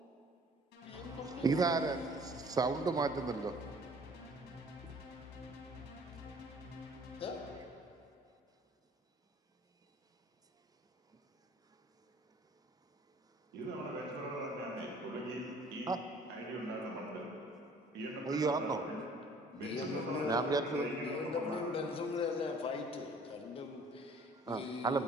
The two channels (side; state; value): both; normal; correlation 0.54